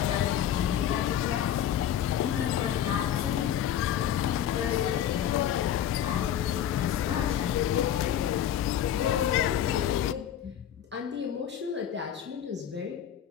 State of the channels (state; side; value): quieter; right; 10.3 dB